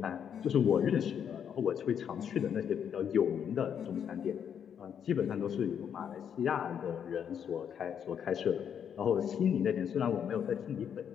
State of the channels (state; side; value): quieter; right; 8.2 dB